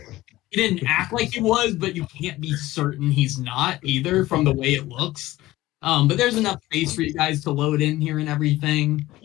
didn't act like he was, but you can't be certain he's not either from the way it looks. But there's enough space for you guys to load in here and everything.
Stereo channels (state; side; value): quieter; right; 17.0 dB